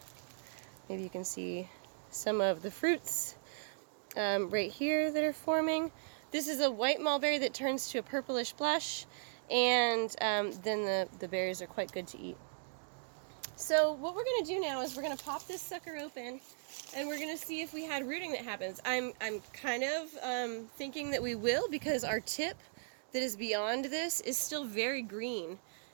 maybe you can see some of the fruits right here that are forming. This is a white mulberry that turns to a purplish blush, and then the berries are quite good to eat. So what we're going to do now is we're going to pop this sucker open, and we're going to see if we had rooting that happens. I'm kind of thinking that we will, because our tip that is beyond this is still very green,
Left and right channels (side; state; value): left; silent; digital silence